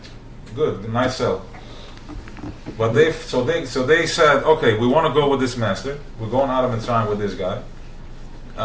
good, nice sell. But they said, okay, we want to go with this master. We're going out of Mitzrayim with this guy,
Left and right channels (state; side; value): identical; both; correlation 1.00